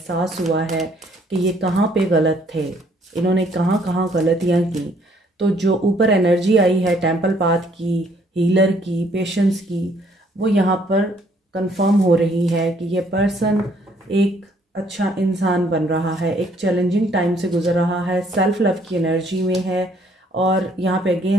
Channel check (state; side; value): normal; both; correlation 0.64